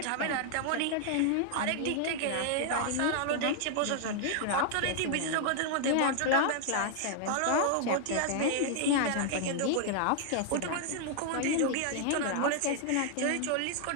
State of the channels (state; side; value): different; both; correlation 0.00